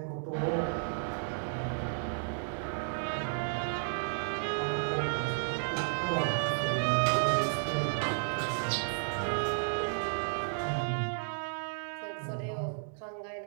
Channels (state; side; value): silent; left; digital silence